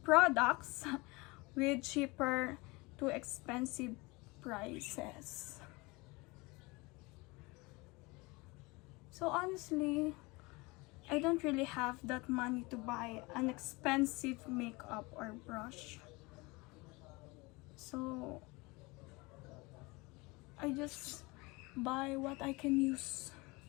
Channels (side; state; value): right; quieter; 24.8 dB